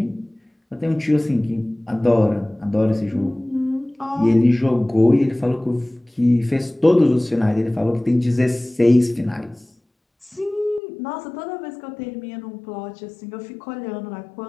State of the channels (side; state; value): right; drops out; at 10.8 s